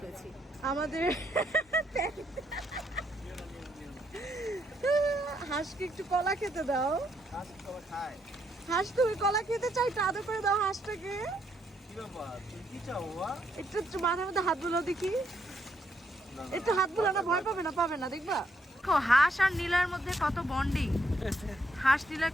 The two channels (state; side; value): normal; both; correlation 0.74